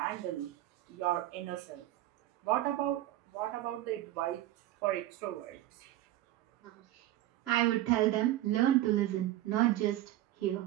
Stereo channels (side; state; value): left; quieter; 14.7 dB